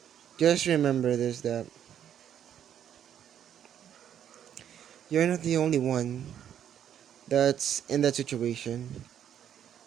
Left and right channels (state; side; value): quieter; left; 9.6 dB